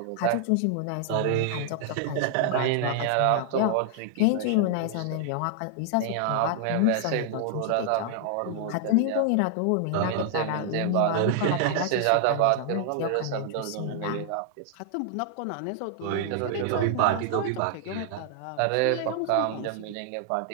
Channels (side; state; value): both; different; correlation 0.00